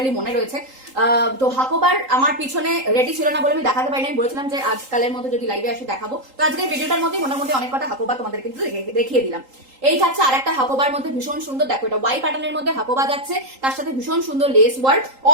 মনে রয়েছে, তো হাকোবার আমার পিছনে রেডি ছিল না বলে আমি দেখাতে পারিনি। আমি বলেছিলাম যে আজকালের মধ্যে যদি লাইভে আসি দেখাবো, তো আজকে ভিডিওটার মধ্যে মোটামুটি অনেক কটা হাকোবা তোমাদের কিন্তু দেখিয়ে দিলাম। এই থাকছে আর একটা হাকোবার মধ্যে ভীষণ সুন্দর, দেখো এটা ওয়াই প্যাটার্নের মধ্যে হাকোবা যাচ্ছে, তার সাথে ভীষণ সুন্দর লেস ওয়ার্ক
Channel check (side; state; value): left; late; 3.8 ms